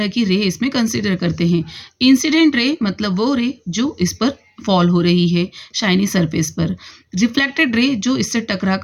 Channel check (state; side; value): identical; both; correlation 1.00